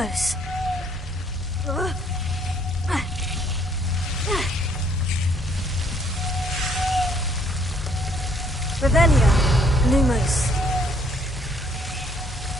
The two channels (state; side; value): normal; both; correlation 0.65